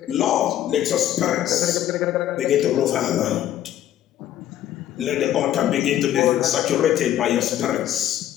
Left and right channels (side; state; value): right; quieter; 11.9 dB